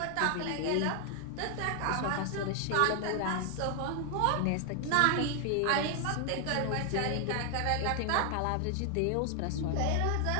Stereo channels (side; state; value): both; different; correlation 0.00